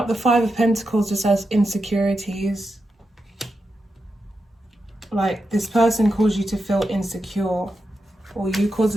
the 5 of Pentacles just as insecurities. Like this person caused you to feel insecure, or you caused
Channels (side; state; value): both; normal; correlation 0.88